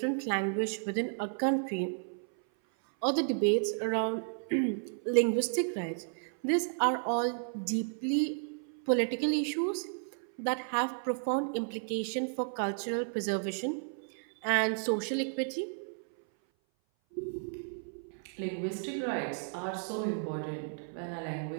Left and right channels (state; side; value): silent; left; 56 dB below the other